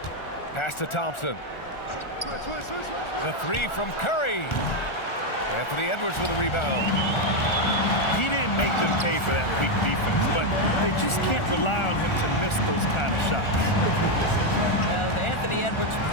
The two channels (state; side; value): late; right; 1.4 ms